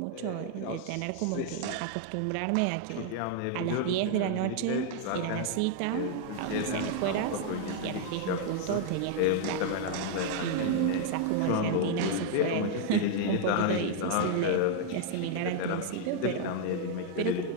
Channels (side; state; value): both; different; correlation 0.00